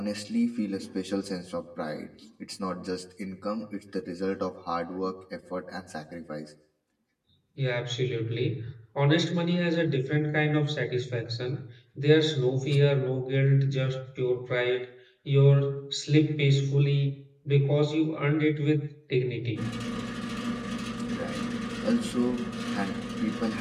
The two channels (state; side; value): identical; both; correlation 1.00